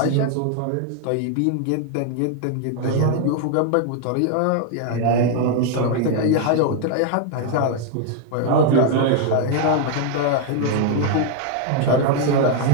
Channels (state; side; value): different; both; correlation 0.00